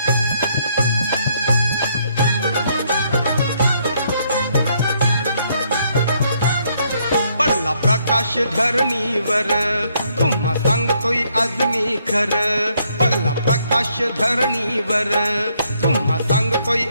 पडला प्रकाश धरणीवर तुम्हा सांगतोय आज मी खरं, पडला प्रकाश धरणीवर तुम्हा सांगतोय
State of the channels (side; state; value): both; inverted; correlation -0.71